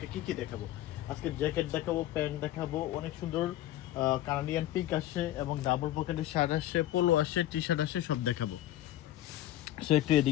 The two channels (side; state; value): right; quieter; 13.7 dB